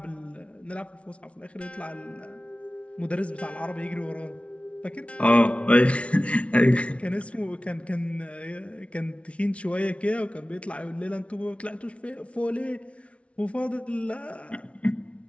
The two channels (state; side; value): late; right; 0.062 ms